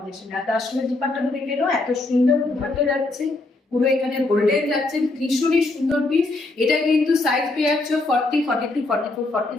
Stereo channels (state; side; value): quieter; right; 3.0 dB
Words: আর তার সঙ্গে দুপাট্টাটা দেখে নাও, এত সুন্দর দুপাট্টা যাচ্ছে, পুরো এখানে গোল্ডেন যাচ্ছে, ভীষণই সুন্দর পিস। এটা কিন্তু সাইজ পেয়ে যাচ্ছে 40, 42, 44,